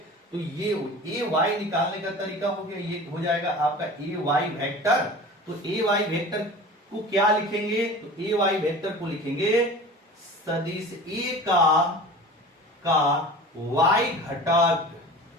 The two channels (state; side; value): normal; both; correlation 0.38